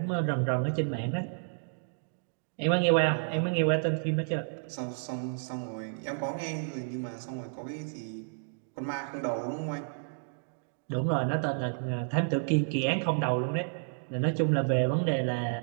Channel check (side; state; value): left; silent; digital silence